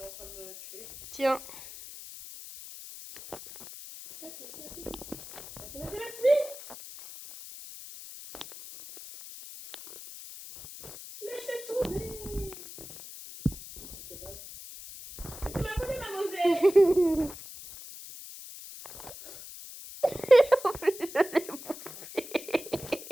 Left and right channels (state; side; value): noise; left; hiss, 13 dB below the sound